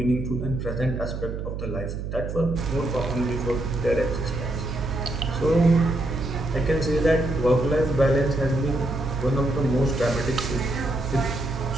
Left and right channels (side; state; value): right; noise; hum, 5 dB below the sound